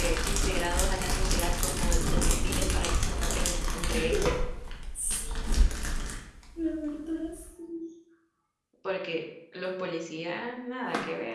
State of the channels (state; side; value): identical; both; correlation 1.00